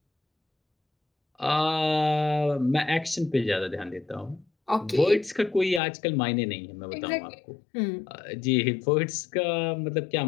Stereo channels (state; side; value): drops out; right; at 5.8 s